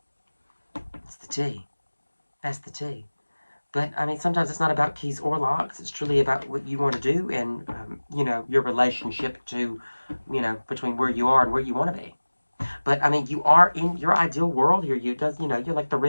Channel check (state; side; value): inverted; both; correlation -1.00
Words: That's the tea. That's the tea. But, I mean, sometimes it's not about keys or locks. It's truly about what you want to do and, you know, your relationship to, you know, between where you are and where you want to be. But, I mean, you are in your ideal world here. You know, you're like the